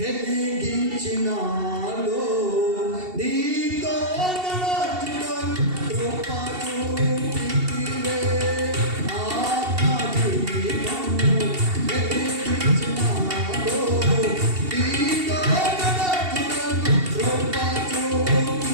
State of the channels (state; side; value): late; left; 2.7 ms